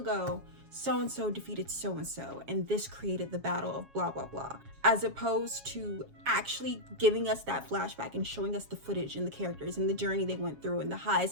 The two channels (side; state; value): left; late; 7.3 ms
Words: so-and-so defeated so-and-so, and this created the battle of blah, blah, blah, as opposed to actually giving us that flashback and showing us the footage and the characters and the journey they went through and the